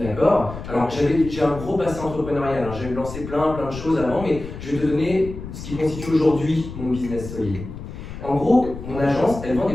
Alors, j'ai un gros passé entrepreneurial. J'ai lancé plein de choses avant, mais je vais te donner ce qui constitue aujourd'hui mon business solide. En gros, mon agence, elle vend des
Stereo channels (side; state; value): left; noise; rumble, 11 dB below the sound